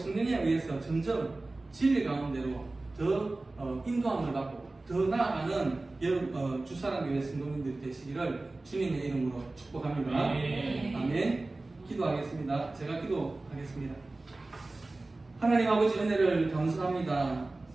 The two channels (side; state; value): left; quieter; 3.1 dB